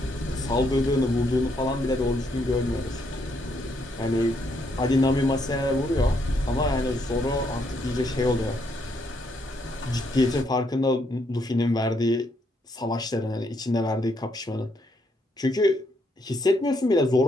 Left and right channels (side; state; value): both; normal; correlation 0.74